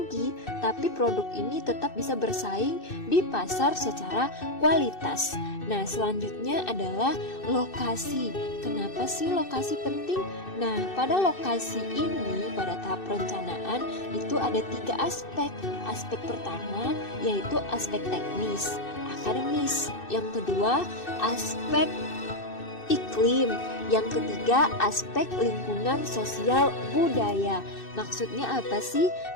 tapi produk ini tetap bisa bersaing di pasar secara kualitas. Nah, selanjutnya adalah lokasi. Kenapa sih lokasi penting? Nah, pada lokasi ini, pada tahap perencanaan pengetahuan itu ada 3 aspek. Aspek pertama yaitu aspek teknis, akademis. Yang kedua, aspek iklim. Yang ketiga, aspek lingkungan, sosial, budaya. Maksudnya apa sih?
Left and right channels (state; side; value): late; right; 2.6 ms